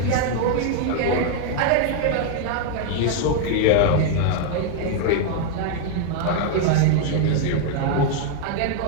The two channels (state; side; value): different; both; correlation 0.00